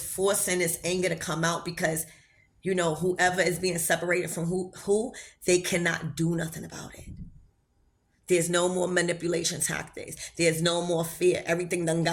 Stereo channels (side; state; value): both; identical; correlation 1.00